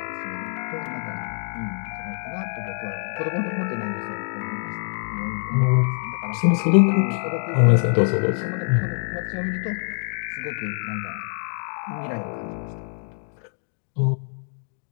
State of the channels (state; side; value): silent; right; digital silence